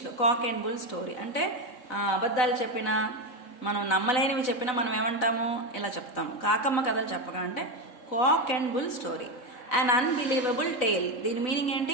కాక్ అండ్ బుల్ స్టోరీ అంటే అబద్ధాలు చెప్పినా, మనం నమ్మలేనివి చెప్పినా మనం ఏమంటాము, ఇలా చెప్తాము. కాకమ్మ కథలు చెప్పక అంటే cock and bull story. An unbelievable tale. దీని మీనింగ్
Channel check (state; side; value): late; right; 4.0 ms